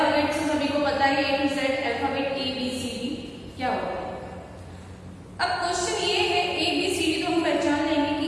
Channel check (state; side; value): identical; both; correlation 1.00